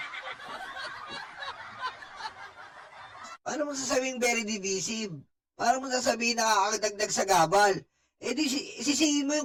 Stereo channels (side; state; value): both; identical; correlation 1.00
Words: Paano mo sasabihin very divisive? Paano mo sasabihin nakakadagdag sa gabal? Eh di sisihin mo